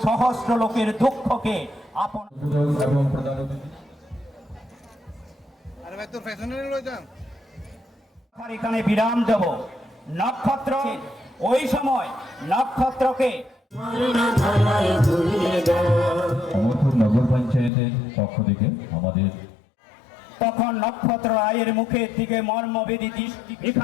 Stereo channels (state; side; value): drops out; right; at 17.7 s